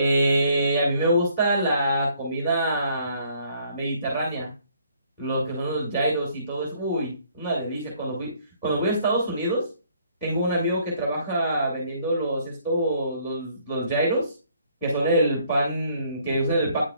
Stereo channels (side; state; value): both; inverted; correlation -0.63